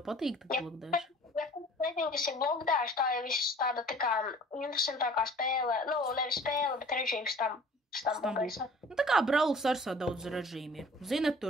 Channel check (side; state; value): both; normal; correlation 0.49